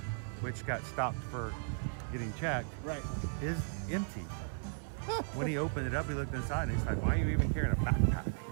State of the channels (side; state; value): left; silent; digital silence